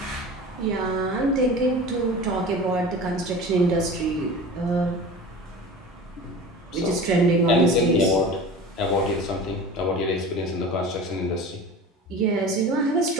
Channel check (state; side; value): normal; both; correlation 0.36